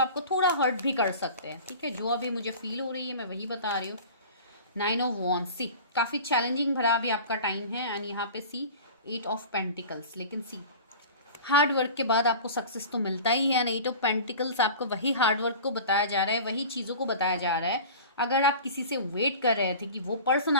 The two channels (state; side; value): inverted; both; correlation -0.38